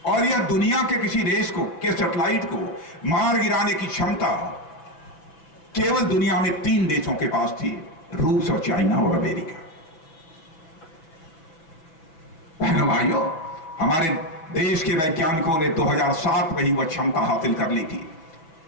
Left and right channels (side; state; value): right; late; 6.1 ms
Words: और यह दुनिया के किसी देश को के सैटेलाइट को मार गिराने की क्षमता केवल दुनिया में 3 देशों के पास थी, रूस और चाइना और अमेरिका। बहनों भाइयों, हमारे देश के वैज्ञानिकों ने 2007 में ही वह क्षमता हासिल कर ली थी।